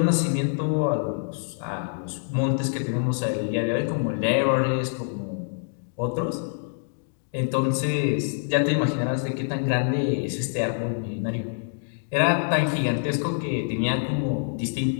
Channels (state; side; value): silent; right; digital silence